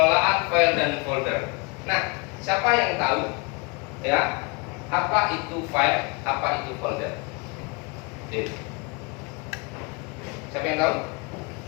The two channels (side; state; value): right; quieter; 28.8 dB